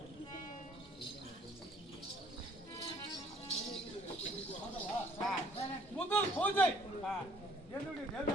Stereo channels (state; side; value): normal; both; correlation 0.56